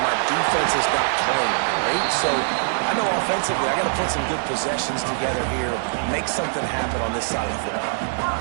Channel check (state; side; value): silent; left; 64 dB below the other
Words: defense is not playing great, so I know offensively I got to put some good possessions together here, make something happen on this side of the football.